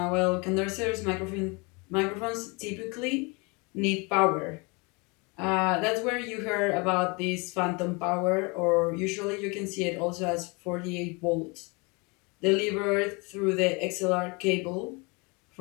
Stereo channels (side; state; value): right; quieter; 29.2 dB